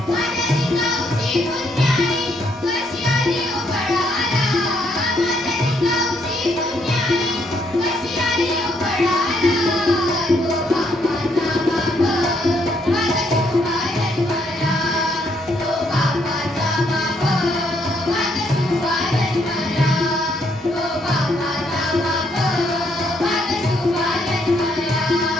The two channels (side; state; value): both; normal; correlation 0.72